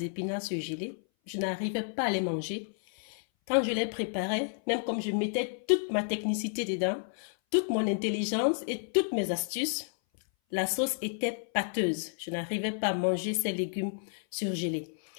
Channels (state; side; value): silent; right; 57 dB below the other